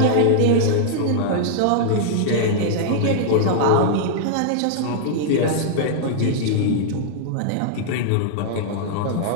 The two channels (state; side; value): different; both; correlation -0.01